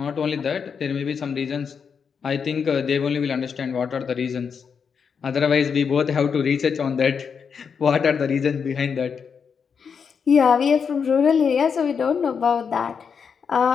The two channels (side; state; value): right; quieter; 6.4 dB